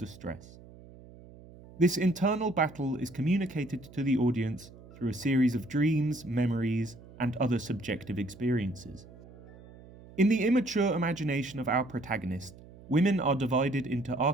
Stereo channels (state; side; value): noise; right; hum, 20 dB below the sound